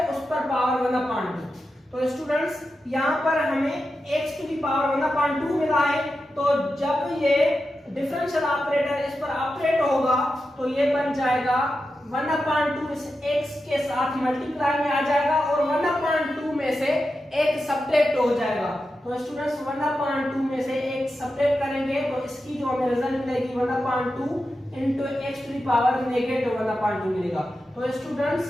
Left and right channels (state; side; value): normal; both; correlation 0.90